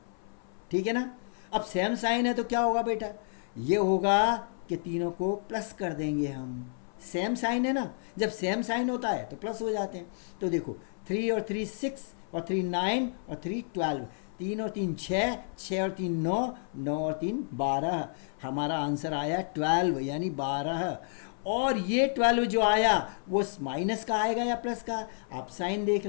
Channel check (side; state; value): right; silent; 58 dB below the other